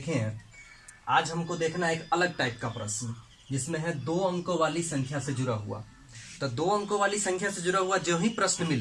हैं। आज हमको देखना है एक अलग टाइप का प्रश्न जिसमें है दो अंकों वाली संख्या से जुड़ा हुआ। तो दो अंकों वाली संख्या से जुड़ा हुआ जो ही प्रश्न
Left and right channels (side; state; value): both; identical; correlation 1.00